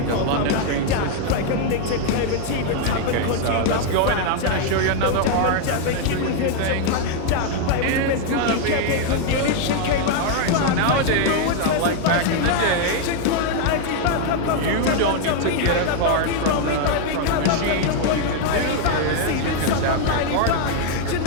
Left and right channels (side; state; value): both; different; correlation 0.00